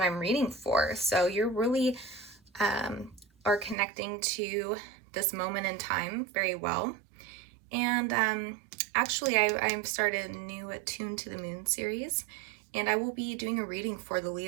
I'm reading for. So you're really are connecting to this moment in time very well. And actually I'm started a new Attuned to the Moon series, and I will be doing a reading for the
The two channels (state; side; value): drops out; left; at 3.8 s